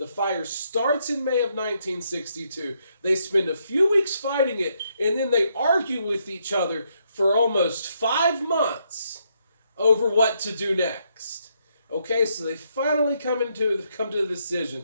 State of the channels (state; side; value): inverted; both; correlation -0.75